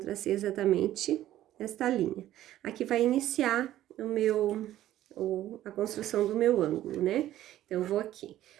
exatamente esta linha. Aqui vai iniciar a construção do meu ângulo, né? Então, eu vou aqui.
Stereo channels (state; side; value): quieter; left; 13.4 dB